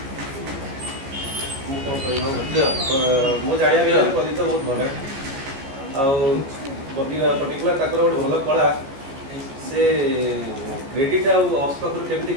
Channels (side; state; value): left; late; 15 ms